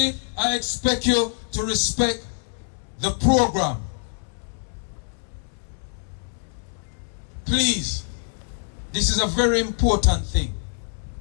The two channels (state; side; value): silent; right; digital silence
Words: I expect you to respect the program. Please, this is a very important thing.